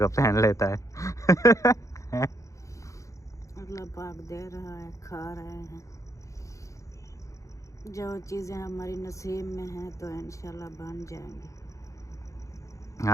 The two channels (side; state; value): right; late; 0.15 ms